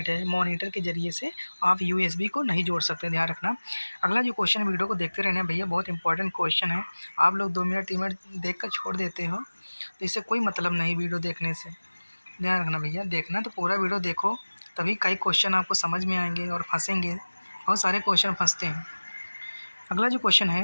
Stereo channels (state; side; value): inverted; both; correlation -1.00